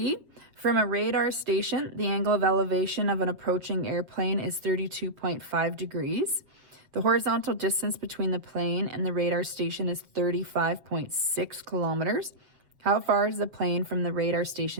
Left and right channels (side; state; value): left; late; 7.3 ms